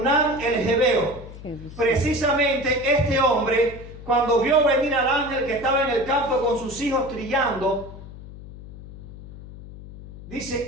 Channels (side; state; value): left; noise; hum, 15 dB below the sound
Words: el Jebeo. Precisamente este hombre, cuando vio venir al ángel que estaba en el campo con sus hijos trillando, dice: